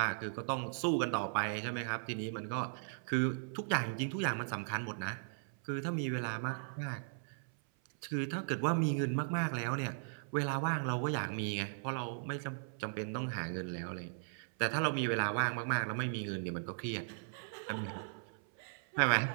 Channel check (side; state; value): left; silent; 53 dB below the other